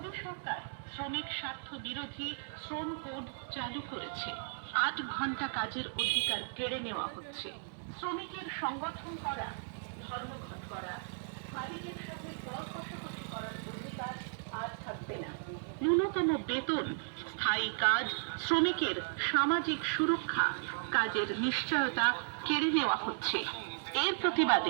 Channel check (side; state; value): left; silent; digital silence